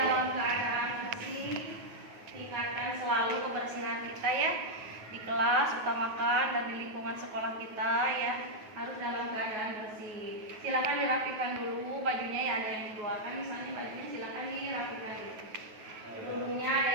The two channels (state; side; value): late; left; 9.3 ms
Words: keadaan bersih. Tingkatkan selalu kebersihan kita ya. Di kelas utamakan dan di lingkungan sekolah kita ya harus dalam keadaan bersih. Silakan dirapikan dulu bajunya ya, ada yang dikeluarkan misalnya bajunya silakan dirapikan dulu. Dulunya